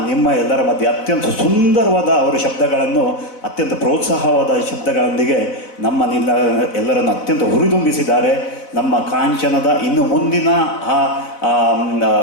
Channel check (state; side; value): late; right; 4.0 ms